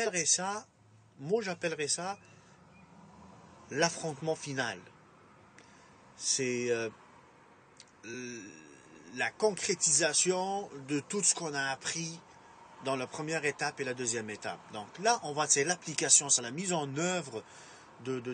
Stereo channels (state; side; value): identical; both; correlation 1.00